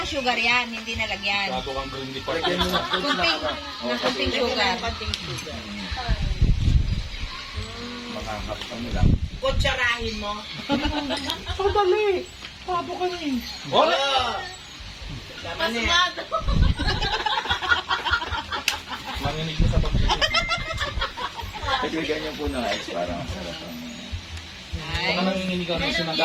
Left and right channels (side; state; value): both; identical; correlation 1.00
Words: sugar yan. Hindi na lagyan. Gato kang green pa. Kunting sugar. Mga hapon lang. Kutsarahin mo. Masmado. Manginig mo sa pagkakas. Dagdagan niyo po ng ice para masarap ang... Baka nanginginig ka na sinaga.